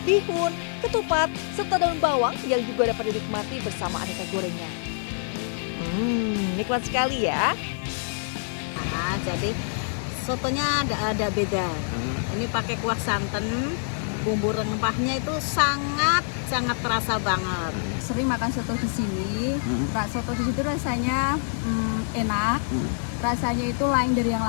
bihun, ketupat, serta daun bawang yang juga dapat dinikmati bersama aneka gorengan. Nikmat sekali ya. Nah, jadi sotonya ada beda. Ini pakai kuah santan, bumbu rempahnya itu sangat terasa banget. Sering makan soto di sini. Soto di situ rasanya enak. Rasanya itu lain dari yang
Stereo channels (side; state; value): right; silent; digital silence